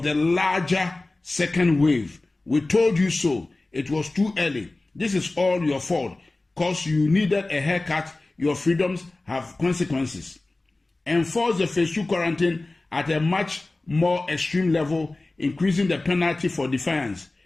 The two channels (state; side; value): quieter; right; 3.0 dB